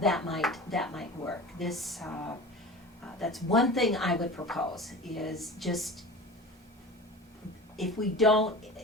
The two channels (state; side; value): normal; both; correlation 0.35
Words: might work. That's one thing I would propose, is just, if we don't,